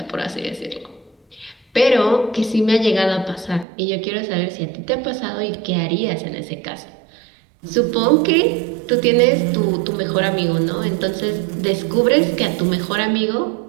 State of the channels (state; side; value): drops out; left; at 3.7 s